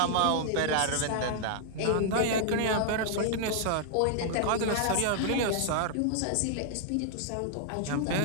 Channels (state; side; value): different; both; correlation -0.01